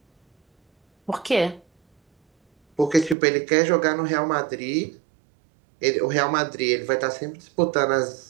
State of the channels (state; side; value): drops out; left; at 3.2 s